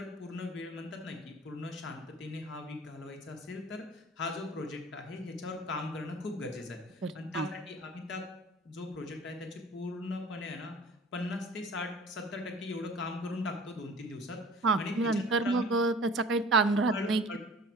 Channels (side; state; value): both; normal; correlation 0.46